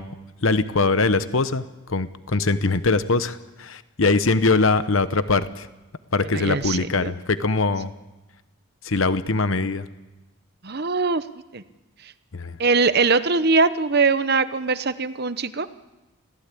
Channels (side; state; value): both; normal; correlation 0.02